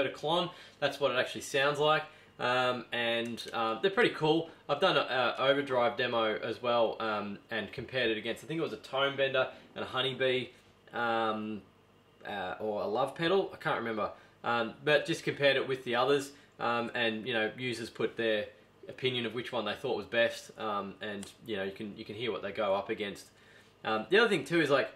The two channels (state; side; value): identical; both; correlation 1.00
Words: a Klon. That's what it actually sounds like. They're pretty cool. I've done an overdrive demo as well, and compared it against, I think it was a tone bender and a honeybee, or a love pedal, I can't remember, but just compared it with the others. and users put their opinion of which one they thought was best, and you can hear what they go up against. The other thing too is like